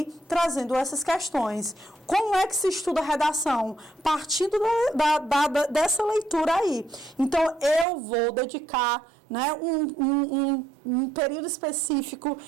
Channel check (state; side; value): drops out; left; at 7.9 s